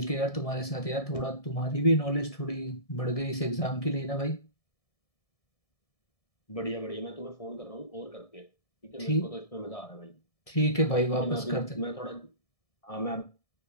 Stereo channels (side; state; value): right; late; 1.7 ms